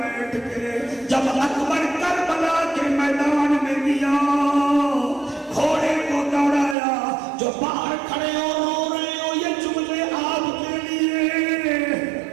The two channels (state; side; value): drops out; left; at 6.8 s